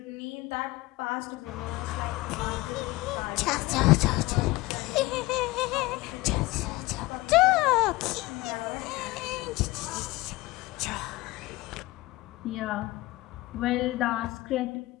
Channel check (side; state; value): right; quieter; 20.1 dB